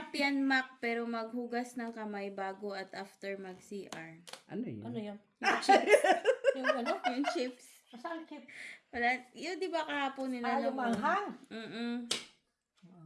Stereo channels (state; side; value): identical; both; correlation 1.00